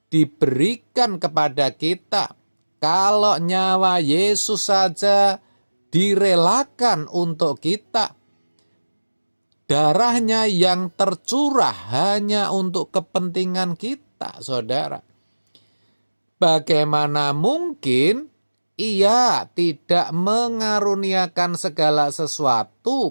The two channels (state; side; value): inverted; both; correlation -1.00